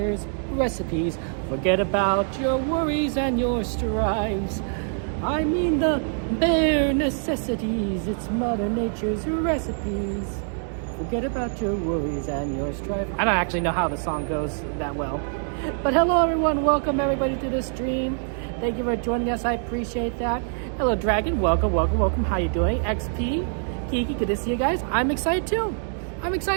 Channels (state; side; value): silent; left; 62 dB below the other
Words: recipes. Forget about your worries and your strives. I mean the bare necessities, it's Mother Nature's recipes. Forget about your worries and your strife. I don't actually know how the song goes that well. But hello everyone, welcome everybody to the stream. Thank you for joining us, I appreciate that. Hello Dragon, welcome. How you doing? XP, Kiki, good to see you guys. I'm excited too